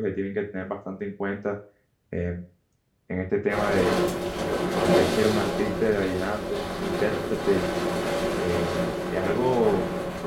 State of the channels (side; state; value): both; identical; correlation 1.00